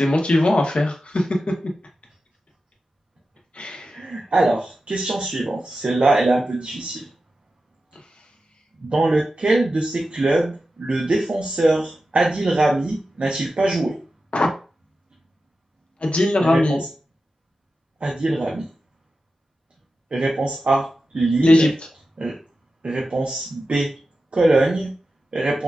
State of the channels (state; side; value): normal; both; correlation 0.92